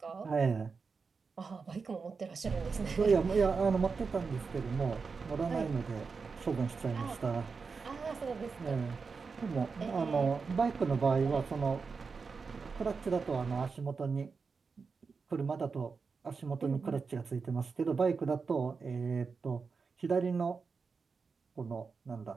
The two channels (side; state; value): left; quieter; 5.0 dB